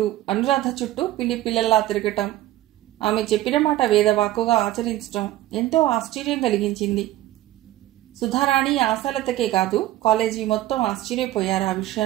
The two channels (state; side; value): quieter; left; 14.9 dB